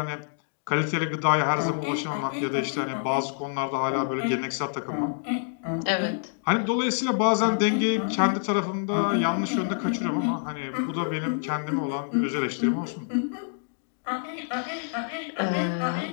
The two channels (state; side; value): silent; right; digital silence